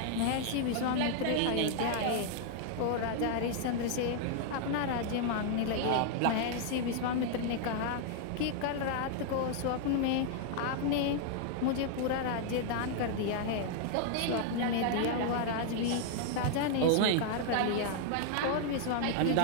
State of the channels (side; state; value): both; different; correlation -0.01